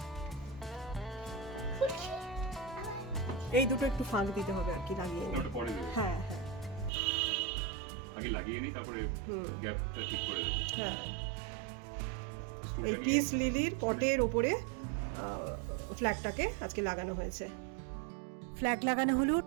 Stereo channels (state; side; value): drops out; left; at 6.9 s